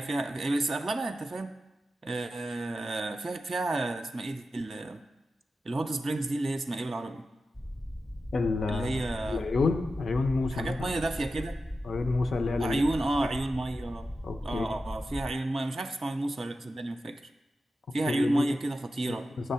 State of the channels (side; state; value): both; normal; correlation 0.91